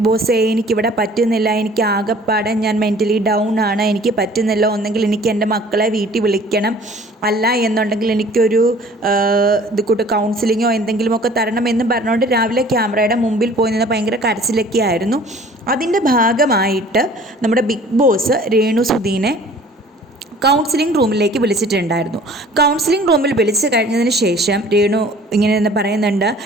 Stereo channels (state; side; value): normal; both; correlation 0.50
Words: ബോസ് എനിക്കിവിടെ പറ്റുന്നില്ല, എനിക്ക് ആകെപ്പാടെ ഞാൻ മെൻ്റലി ഡൗൺ ആണ്, എനിക്ക് പറ്റുന്നില്ല, ഒന്നെങ്കിൽ എനിക്ക് എൻ്റെ മക്കളെ വീട്ടിൽ വിളിക്കണം, അല്ല എന്നുണ്ടെങ്കിൽ എനിക്കൊരു ഇത് കൂട്ട് കൗൺസിലിങ്ങോ എന്തെങ്കിലുമൊക്കെ തരണം എന്ന് പറഞ്ഞുകൊണ്ട് രാവിലെ ക്യാമറയുടെ മുമ്പിൽ പോയി നിന്ന് ഭയങ്കര കരച്ചിലൊക്കെ ആയിരുന്നു. അതിൻ്റെ ഭാഗമായിട്ട് നമ്മുടെ ബിഗ് ബോസ് രേണു സുധീനെ കൗൺസിലിംഗ് റൂമിലേക്ക് വിളിച്ചിട്ടുണ്ടായിരുന്നു. കൗൺസിലിംഗ് റൂമിൽ വിളിച്ച് കഴിഞ്ഞതിന് ശേഷം രേണു ഇങ്ങനെ പറയുന്നുണ്ട്,